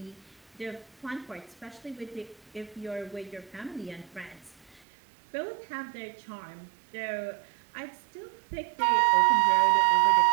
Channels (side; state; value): left; drops out; at 4.8 s